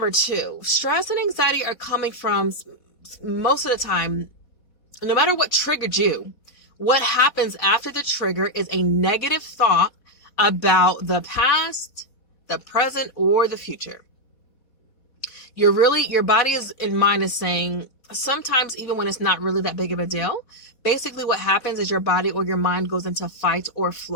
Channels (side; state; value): right; late; 4.2 ms